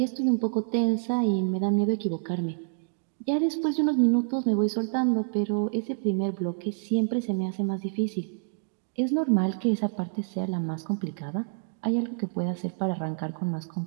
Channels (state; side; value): silent; left; digital silence